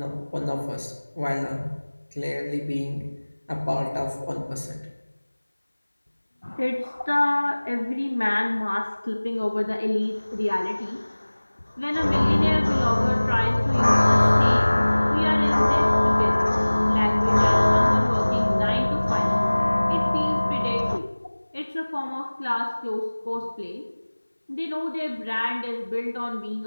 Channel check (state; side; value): inverted; both; correlation -1.00